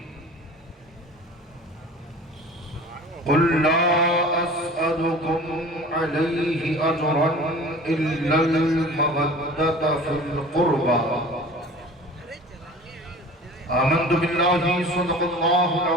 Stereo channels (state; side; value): normal; both; correlation 0.42